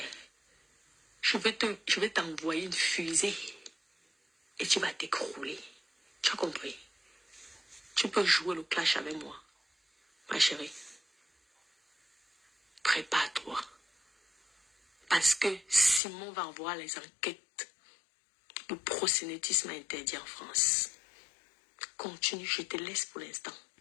je vais t'envoyer une fusée. Et tu vas t'écrouler. Tu as compris? Tu peux jouer le clash avec moi. Ma chérie. Prépare-toi. Parce que Simon va voir les enquêtes. Le proxénétisme interdit en France. Continue, je te laisse pour l'instant.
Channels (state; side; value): drops out; right; at 16.0 s